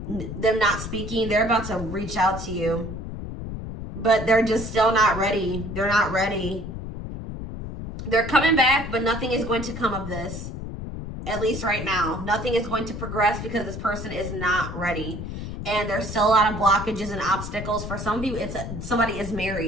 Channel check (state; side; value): noise; left; rumble, 7 dB below the sound